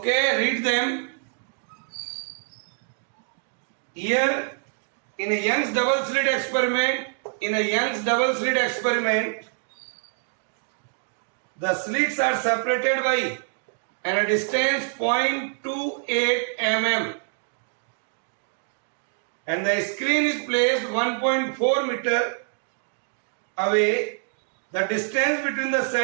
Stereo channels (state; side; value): silent; left; 57 dB below the other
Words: read them. Here in a Young's double slit experiment, the slits are separated by a distance 0.28 mm. And the screen is placed 1.4 meter away. The distance between the